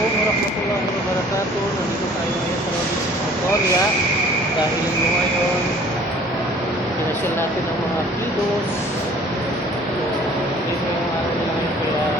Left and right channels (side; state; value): both; normal; correlation 0.52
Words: warahmatullahi wabarakatuh. Nandito tayo ngayon sa Province of Victoria dahil ngayon pinasyal natin ang mga kilos. So, dito yung araw nila ngayon kaya